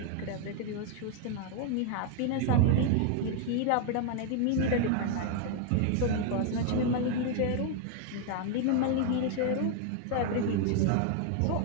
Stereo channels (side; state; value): both; different; correlation 0.00